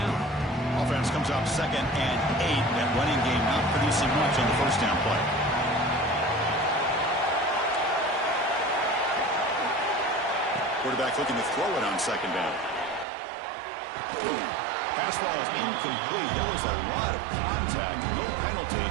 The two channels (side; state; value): left; drops out; at 13.1 s